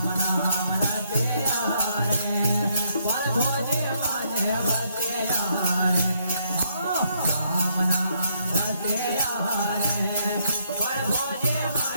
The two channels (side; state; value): both; inverted; correlation -0.73